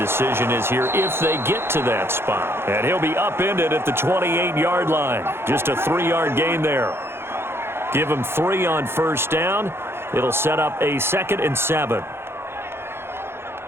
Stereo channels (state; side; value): late; left; 0.12 ms